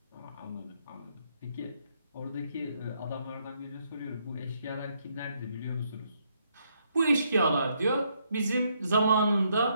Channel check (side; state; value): both; inverted; correlation -0.75